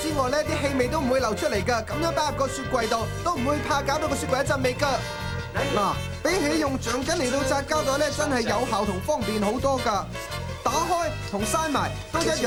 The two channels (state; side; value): identical; both; correlation 1.00